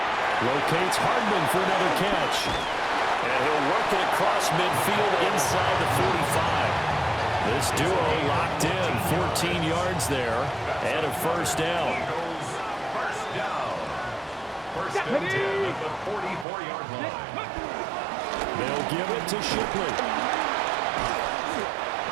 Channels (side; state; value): left; drops out; at 16.4 s